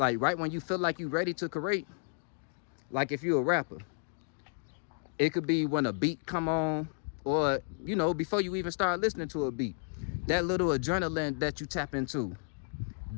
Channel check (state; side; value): silent; right; digital silence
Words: right when you feel like you're ready to create? Like if you're a rapper, it could be when a beat come on, or, you know, before you even start listening to a beat. That little adrenaline that you tap into,